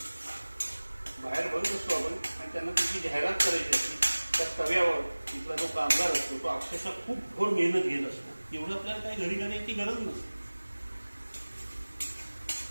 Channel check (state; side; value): inverted; both; correlation -1.00